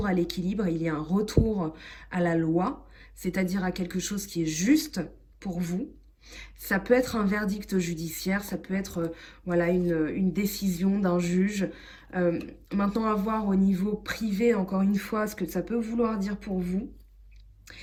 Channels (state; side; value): identical; both; correlation 1.00